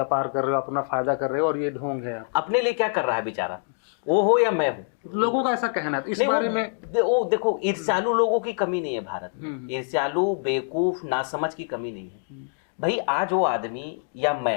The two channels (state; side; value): silent; right; digital silence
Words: कर रहे हो, अपना फायदा कर रहे हो और ये ढोंग है। अपने लिए क्या कर रहा है बेचारा, वो हो या मैं हूँ? लोगों का ऐसा कहना है। इस नहीं, बारे में वो देखो, ईर्ष्यालु लोगों की कमी नहीं है भारत में। ईर्ष्यालु, बेवकूफ, नासमझ की कमी नहीं है। भाई आज वो आदमी या